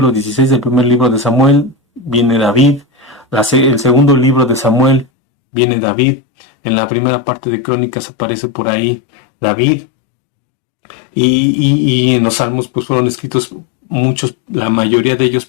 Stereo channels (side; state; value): right; drops out; at 5.1 s